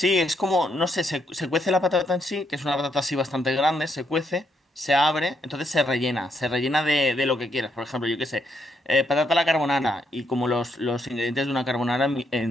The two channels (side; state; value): both; normal; correlation 0.76